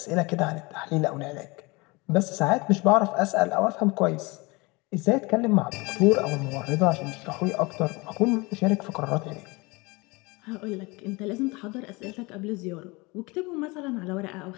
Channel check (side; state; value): right; quieter; 25.3 dB